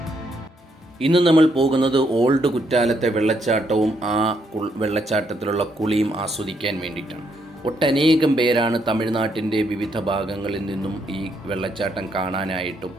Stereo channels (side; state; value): both; normal; correlation 0.75